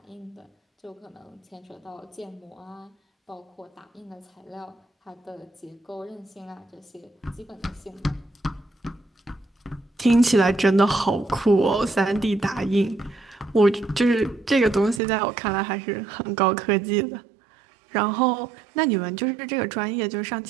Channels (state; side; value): drops out; left; at 15.0 s